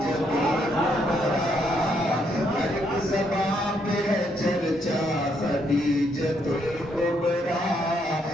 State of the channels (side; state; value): both; normal; correlation 0.74